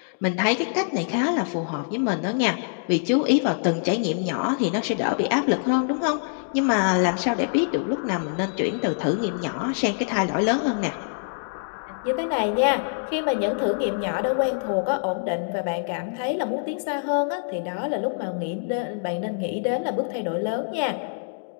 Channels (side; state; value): right; silent; digital silence